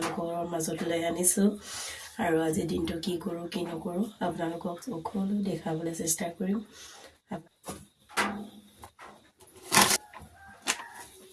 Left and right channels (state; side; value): identical; both; correlation 1.00